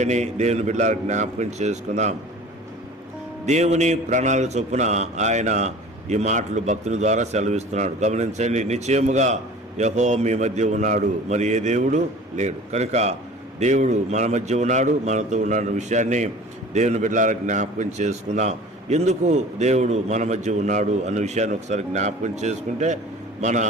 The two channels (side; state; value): both; normal; correlation 0.42